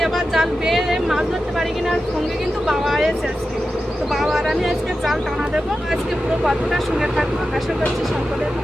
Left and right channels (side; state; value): both; normal; correlation 0.91